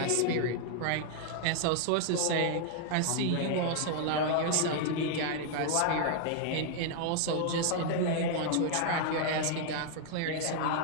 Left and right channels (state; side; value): different; both; correlation 0.00